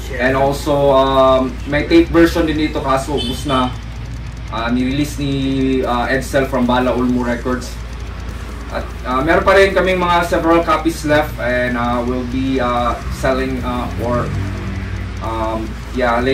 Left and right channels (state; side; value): identical; both; correlation 1.00